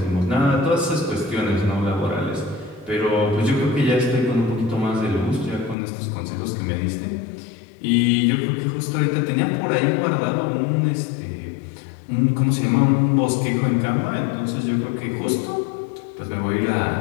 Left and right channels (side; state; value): right; drops out; at 5.8 s